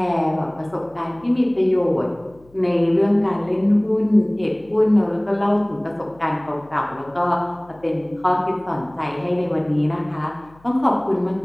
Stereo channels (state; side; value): noise; left; hum, 28 dB below the sound